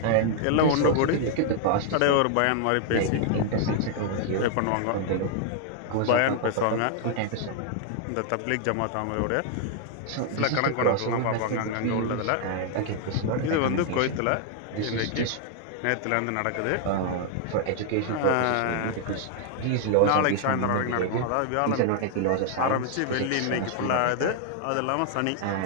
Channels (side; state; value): both; different; correlation 0.00